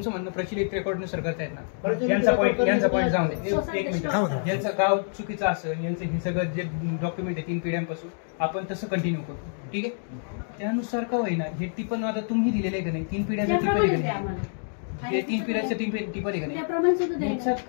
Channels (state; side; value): silent; right; digital silence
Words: म्हणणं प्रचलित रेकॉर्डनुसार करतायत ना. प्रचलित यांचा पॉईंट रेकॉर्ड जाऊन दे. सोसायटी एक मिनिट. थांबा. यांचं गाव चुकीचं असेल, यांचं हे सगळं जे डॉक्युमेंट आहे 3 पिढ्यांपासून, आपण तसं कंटिन्यू करू, ठीक आहे. त्यानुसार का होईना हे टिपण आता तुम्ही दिलेलं आहे का नाही, 3 पिढ्यांचं टिपण आहे त्याप्रमाणे का द्या नाही, आम्हाला. हे 3 पिढ्यांचं टिपण आहे का नाही, त्याप्रमाणे सुद्धा द्यायला. याच्यात